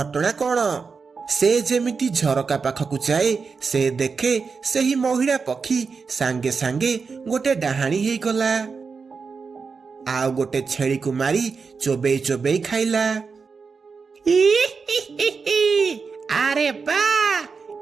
କଣ। ସେ ଯେମିତି ଝରକା ପାଖକୁ ଯାଏ, ସେ ଦେଖେ ସେହି ମହିଳା ପକ୍ଷୀ ସାଙ୍ଗେ ସାଙ୍ଗେ ଗୋଟେ ଡାହାଣୀ ହେଇଗଲା। ଆଉ ଗୋଟେ ଛେଳିକୁ ମାରି ଚୋବେଇ ଚୋବେଇ ଖାଇଲା। ଆରେ ବା,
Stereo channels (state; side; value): quieter; left; 5.1 dB